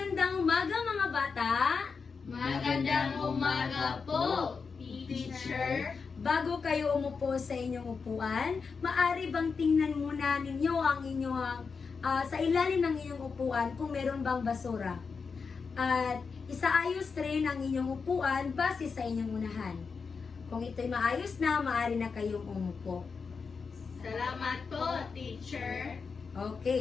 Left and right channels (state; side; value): quieter; right; 5.2 dB